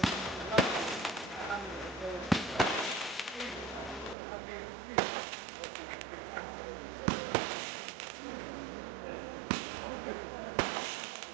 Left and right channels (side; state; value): left; drops out; at 4.2 s